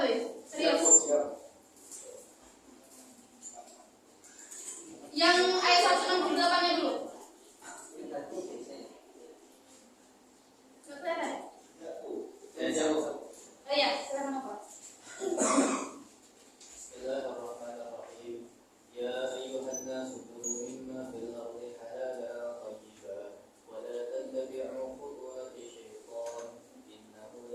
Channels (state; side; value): identical; both; correlation 1.00